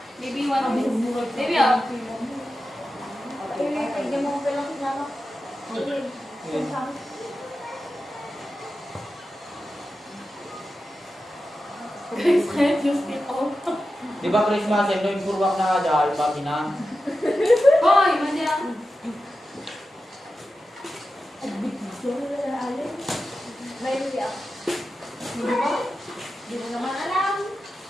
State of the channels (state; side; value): normal; both; correlation 0.92